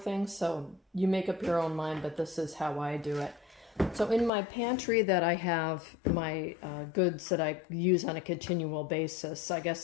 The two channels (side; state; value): right; drops out; at 4.3 s